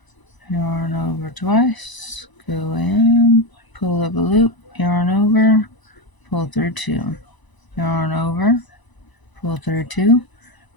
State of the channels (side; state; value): right; late; 1.0 ms